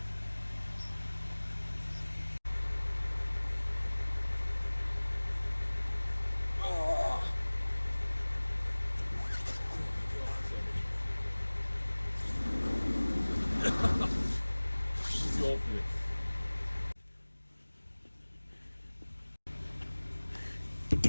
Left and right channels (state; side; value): inverted; both; correlation -1.00